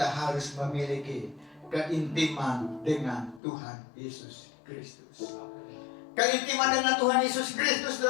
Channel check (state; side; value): drops out; right; at 3.4 s